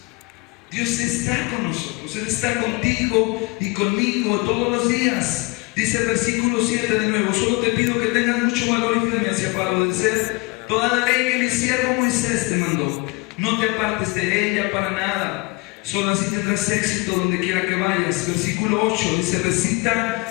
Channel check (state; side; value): quieter; right; 26.3 dB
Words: Dios está con nosotros, Él está contigo y conmigo todos los días. Dice el versículo 7 de nuevo: solo te pido que tengas mucho valor y firmeza para obedecer toda la ley que mi siervo Moisés te mandó. No te apartes de ella para nada, solo así tendrás éxito donde quiera que vayas. Versículo 8 dice: